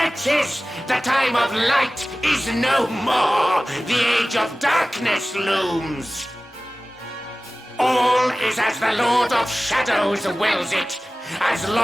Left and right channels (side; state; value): both; normal; correlation 0.97